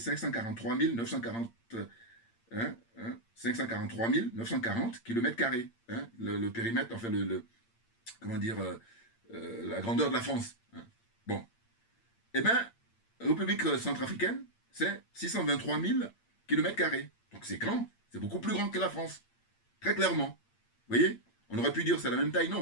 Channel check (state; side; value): late; right; 8.7 ms